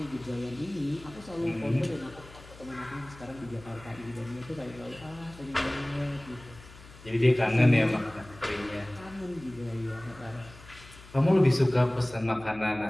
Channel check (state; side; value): noise; left; hum, 20 dB below the sound